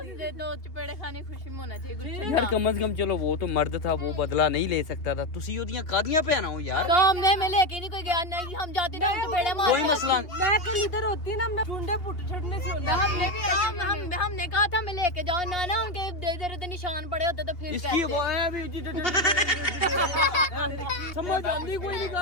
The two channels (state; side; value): late; right; 2.8 ms